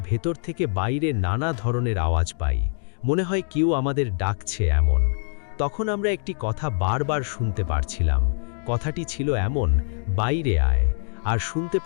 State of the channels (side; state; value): right; silent; digital silence